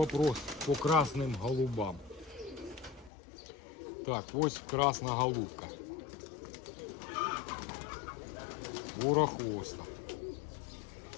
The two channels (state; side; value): drops out; right; at 3.1 s